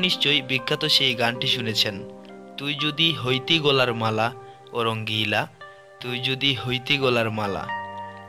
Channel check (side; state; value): both; identical; correlation 1.00